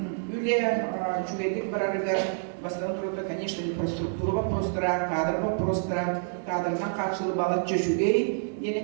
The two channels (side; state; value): left; silent; digital silence